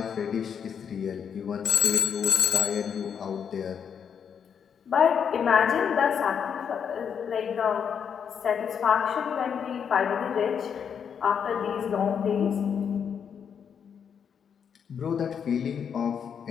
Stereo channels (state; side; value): quieter; right; 7.4 dB